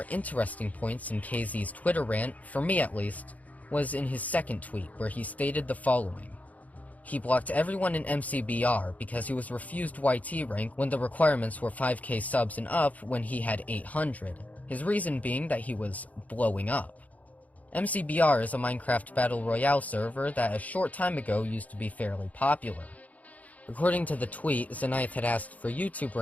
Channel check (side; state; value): right; late; 0.073 ms